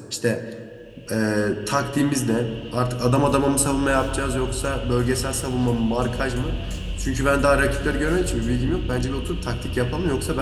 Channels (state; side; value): identical; both; correlation 1.00